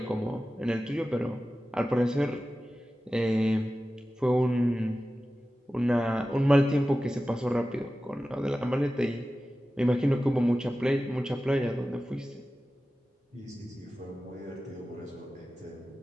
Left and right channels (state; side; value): normal; both; correlation 0.95